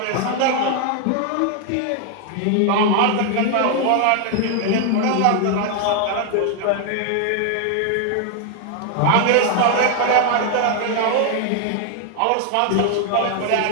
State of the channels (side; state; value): both; different; correlation 0.00